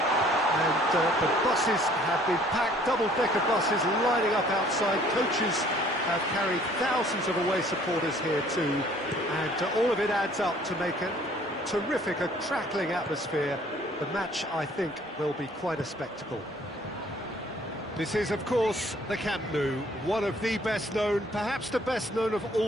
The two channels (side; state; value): both; normal; correlation 0.57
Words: the buses have been packed, double-decker buses lining up outside. Coaches have carried thousands of away supporters here too, and all of it adds up to make a terrific, a crackling atmosphere. The match, I think, will be quite a spectacle. This is, of course, the Camp Nou, one of the best known, perhaps the best known of